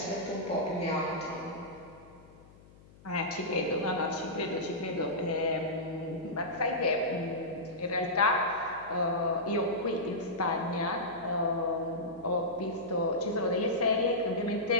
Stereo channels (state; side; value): noise; left; hum, 24 dB below the sound